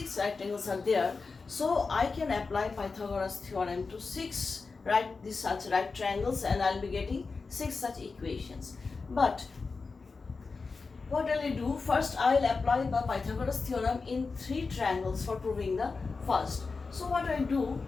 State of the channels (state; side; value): quieter; right; 4.4 dB